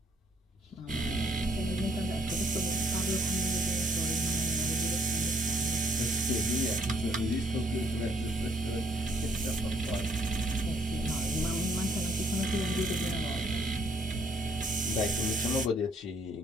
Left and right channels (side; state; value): both; normal; correlation 0.67